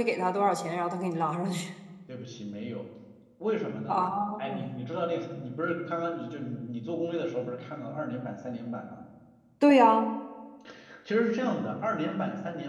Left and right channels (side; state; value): both; identical; correlation 1.00